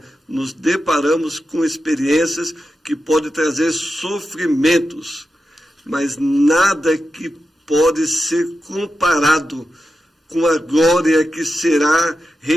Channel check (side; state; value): both; normal; correlation 0.90